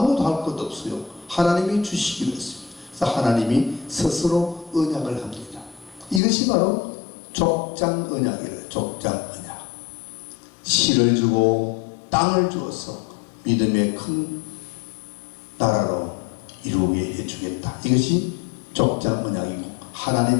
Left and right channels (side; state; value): right; drops out; at 6.2 s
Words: 할 것도 없어요. 하나님이 주시기로 했습니다. 그래서 하나님이 스스로 언약을 합니다. 이것이 바로 족장 언약이래요. 족장 언약. 씨를 주고 땅을 주어서 믿음의 큰 나라로 이루게 해주겠다. 이것이 족장 언약이고,